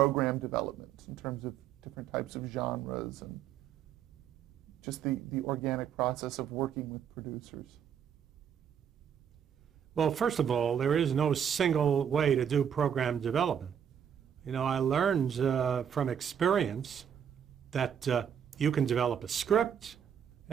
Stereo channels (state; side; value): quieter; left; 8.4 dB